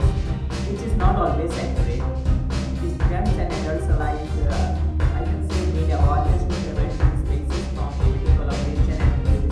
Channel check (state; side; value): identical; both; correlation 1.00